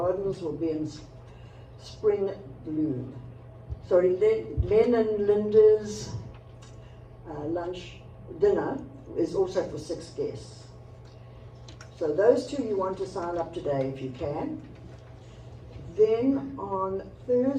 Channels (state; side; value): identical; both; correlation 1.00